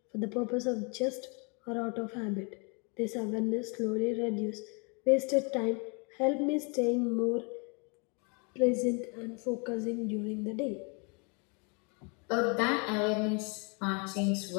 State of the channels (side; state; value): right; quieter; 34.4 dB